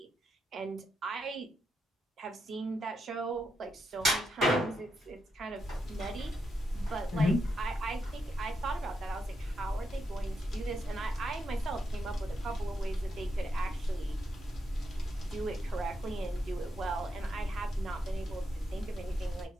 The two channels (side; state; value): both; normal; correlation 0.83